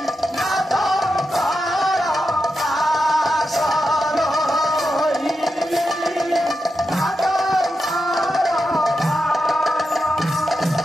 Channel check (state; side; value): normal; both; correlation 0.88